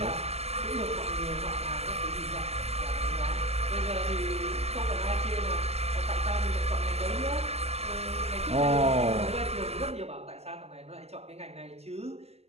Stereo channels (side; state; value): left; late; 0.30 ms